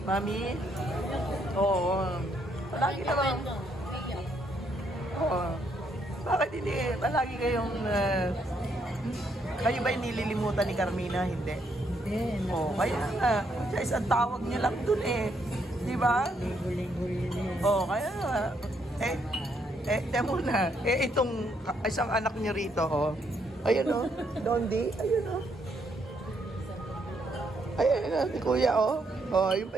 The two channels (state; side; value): normal; both; correlation 0.74